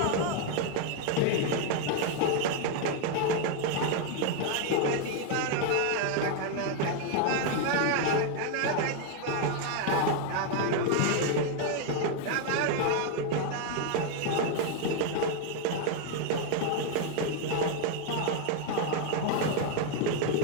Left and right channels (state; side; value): different; both; correlation 0.01